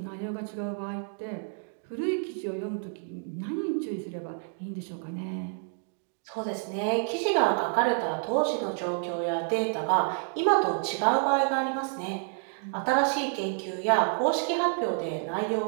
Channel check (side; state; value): left; silent; 59 dB below the other